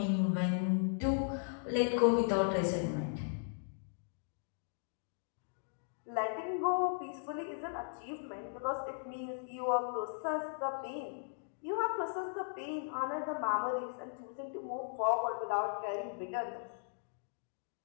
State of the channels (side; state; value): right; silent; digital silence